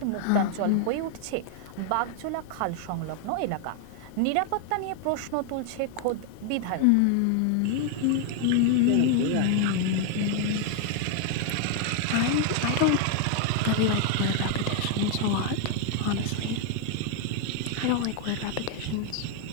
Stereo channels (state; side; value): different; both; correlation 0.00